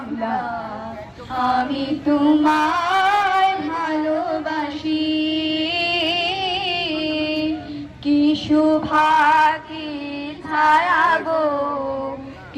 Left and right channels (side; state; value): both; identical; correlation 1.00